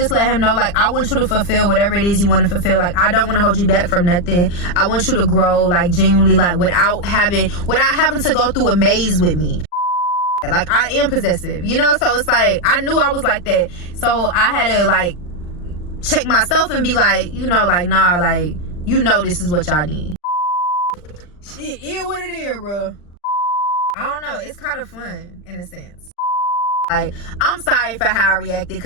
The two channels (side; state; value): right; late; 40 ms